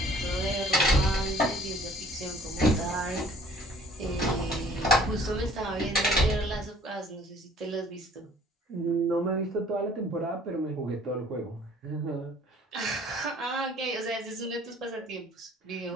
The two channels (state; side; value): normal; both; correlation 0.55